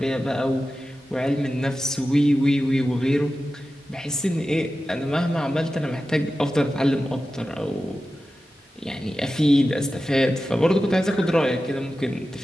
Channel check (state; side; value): normal; both; correlation 0.93